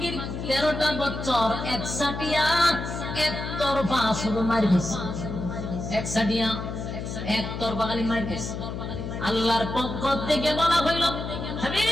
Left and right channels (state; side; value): noise; left; hum, 6 dB below the sound